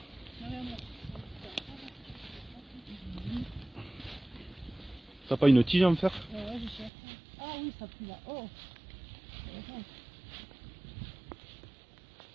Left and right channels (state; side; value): drops out; left; at 6.9 s